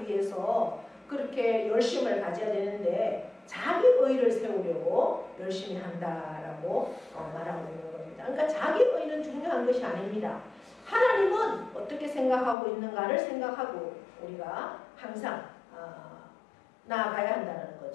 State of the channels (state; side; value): drops out; right; at 12.6 s